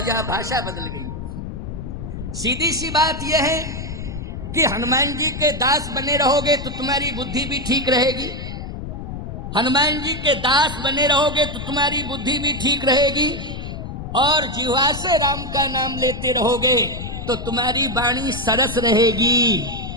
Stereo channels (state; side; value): noise; left; rumble, 8 dB below the sound